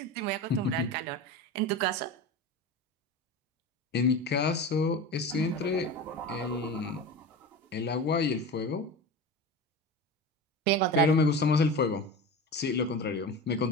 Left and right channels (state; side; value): normal; both; correlation 0.28